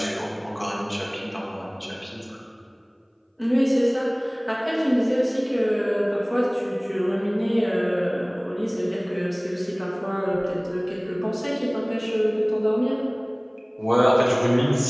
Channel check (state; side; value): identical; both; correlation 1.00